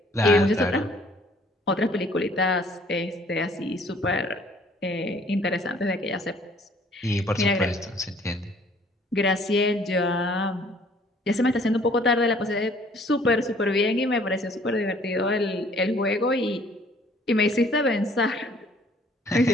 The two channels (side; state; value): both; normal; correlation 0.58